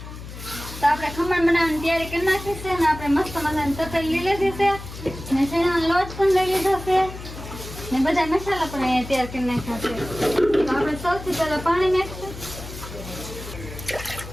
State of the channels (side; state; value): left; noise; hum, 12 dB below the sound